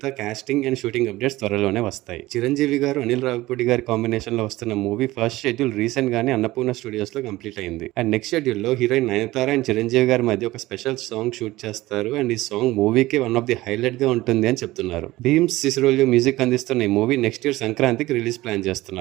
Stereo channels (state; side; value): quieter; left; 18.1 dB